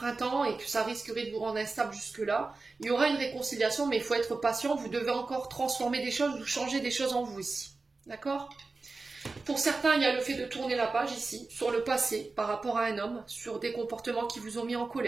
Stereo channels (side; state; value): left; quieter; 3.8 dB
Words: et que ça risquerait de vous rendre instable jusque-là. Il y aura une réconciliation, mais il faut être patient. Vous devez encore transformer des choses ou changer des choses en vous ici. D'accord ? Pour certains, il y a le fait de tourner la page ici, sur le passé, par rapport à un homme, sur des comportements qui vous ont mis en